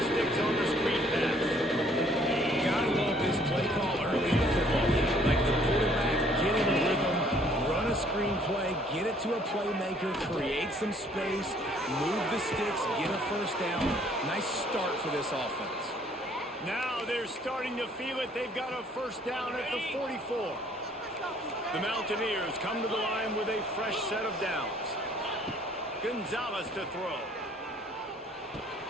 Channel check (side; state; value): both; normal; correlation 0.61